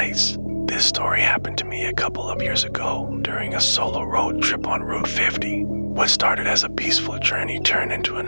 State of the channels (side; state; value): both; inverted; correlation -1.00